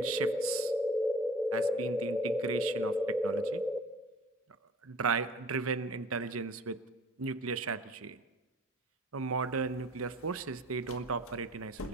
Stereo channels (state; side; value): normal; both; correlation 0.47